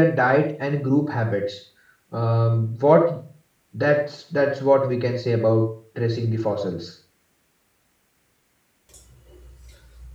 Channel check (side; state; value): both; identical; correlation 1.00